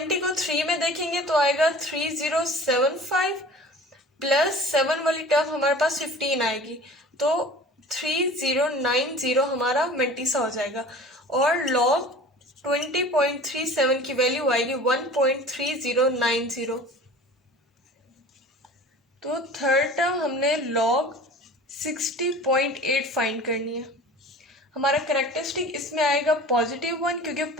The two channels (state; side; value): normal; both; correlation 0.42